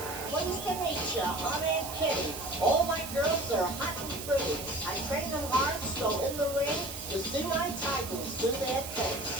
Pleased to meet you. I'm Aunt Kitty. All my girls are hot and pretty. I train them hard, so in the ring, you see my titles do their thing.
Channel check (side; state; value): right; noise; hiss, 9 dB below the sound